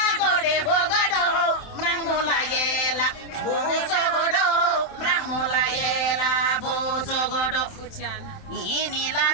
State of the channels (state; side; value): late; right; 27 ms